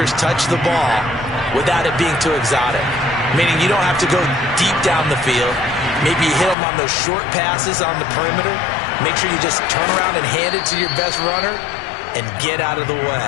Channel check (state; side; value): drops out; right; at 6.6 s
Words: touch the ball without it being too exotic. Meaning you don't have to go deep down the field. Maybe you hit them on those short passes on the perimeter. Make sure you just turn around and hand it to your best runner and get out of the